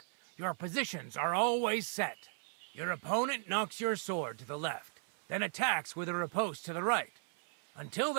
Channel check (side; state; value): left; silent; 53 dB below the other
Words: your positions are always set. Your opponent knocks your sword to the left, then attacks with a riposte to the right. Until